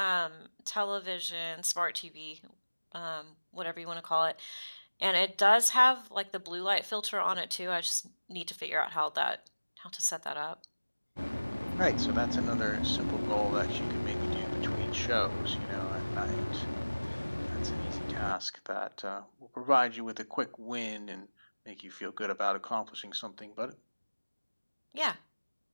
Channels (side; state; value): both; inverted; correlation -1.00